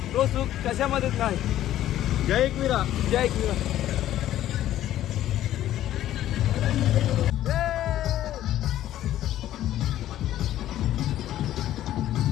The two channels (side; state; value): right; quieter; 12.9 dB